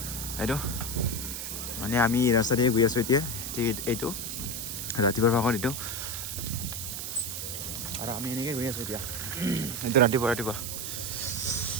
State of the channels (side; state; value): right; noise; hiss, 5 dB below the sound